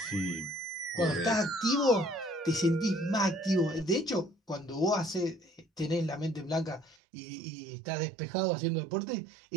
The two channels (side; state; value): left; drops out; at 7.0 s